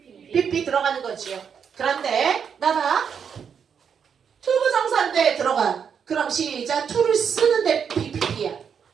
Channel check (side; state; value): left; quieter; 7.2 dB